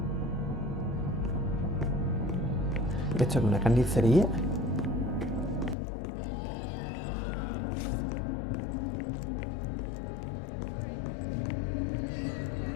¿Esto es una carnicería?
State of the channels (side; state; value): right; drops out; at 5.8 s